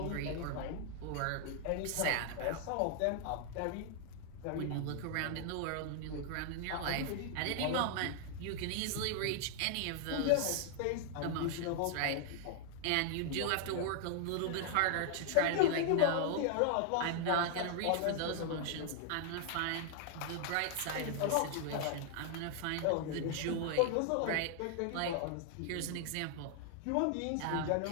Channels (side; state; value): both; different; correlation 0.00